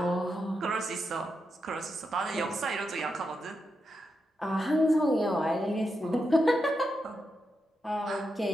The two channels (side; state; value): both; normal; correlation 0.86